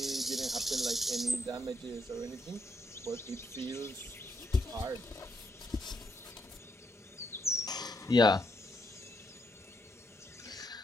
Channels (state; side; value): normal; both; correlation 0.76